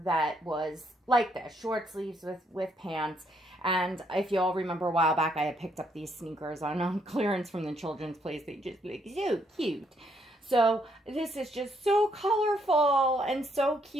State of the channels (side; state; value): both; normal; correlation 0.72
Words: that was like this, short sleeves with pants. And if you all remember a while back, I had picked up these sneakers on clearance from the children's place. They just look so cute. So this is just so colorful and so